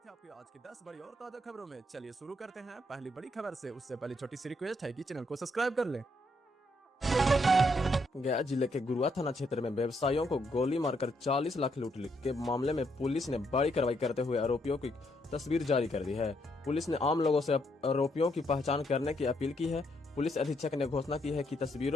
है आपकी आज की 10 बड़ी और ताजा खबरों में। चलिए शुरू करते हैं पहली बड़ी खबर से। उससे पहले छोटी सी रिक्वेस्ट है कि चैनल को सब्सक्राइब कर लें। गया जिले के गुरुआ थाना क्षेत्र में व्यवसायियों को गोली मारकर 40 लाख लूट के मामले में पुलिस ने बड़ी कार्रवाई करते हुए आरोपियों की तस्वीर जारी कर दी है। पुलिस ने आम लोगों से आरोपियों की पहचान करने की अपील की है। पुलिस अधीक्षक ने घोषणा की है कि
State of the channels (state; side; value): normal; both; correlation 0.75